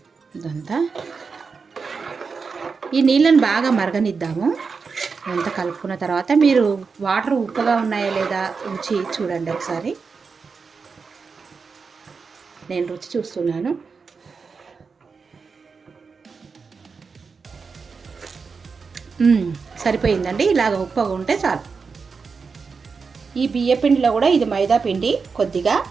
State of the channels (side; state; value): left; quieter; 5.1 dB